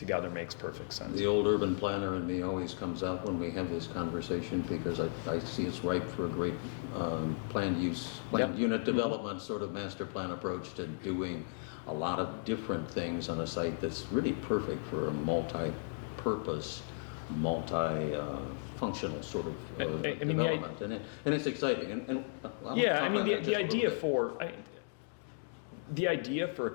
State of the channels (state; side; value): silent; right; digital silence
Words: makes perfect sense. The old urban planner in me always comes out when we have this conversation because I see it's ripe for a great planned unit development sort of master plan approach to doing a lot of different things on a site that's really perfect for a multi-purpose multi-functional sort of I mean, development, and it's exciting. And I'll Yeah, talk I mean, on that the just a little idea bit. the idea for a